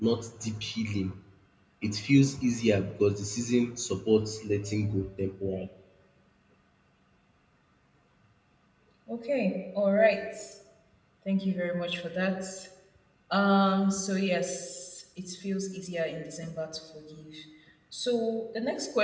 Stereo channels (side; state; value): both; identical; correlation 1.00